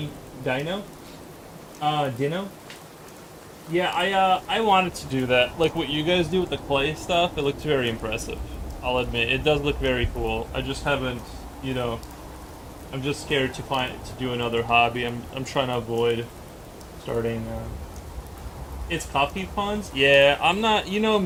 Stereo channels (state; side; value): identical; both; correlation 1.00